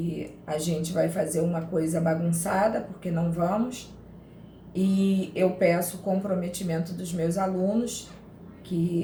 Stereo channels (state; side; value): identical; both; correlation 1.00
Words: a gente vai fazer uma coisa bagunçada, porque não vamos. E eu peço o comprometimento dos meus alunos,